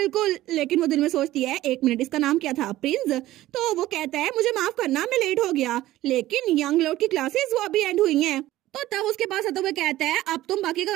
लेकिन वो दिल में सोचती है एक मिनट इसका नाम क्या था? प्रिंस। तो वो कहता है मुझे माफ करना मैं लेट हो गया, लेकिन यंग लॉर्ड की क्लासेस वो अभी एंड हुई हैं। तो तब उसके पास आता हुआ कहता है अब तुम बाकी का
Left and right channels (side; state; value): left; quieter; 15.4 dB